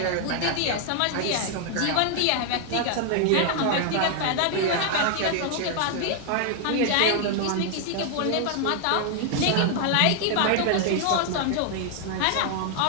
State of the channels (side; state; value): both; different; correlation 0.00